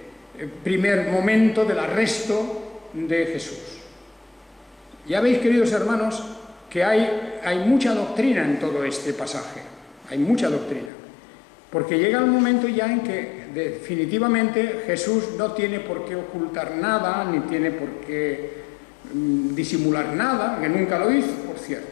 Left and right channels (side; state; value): right; drops out; at 10.9 s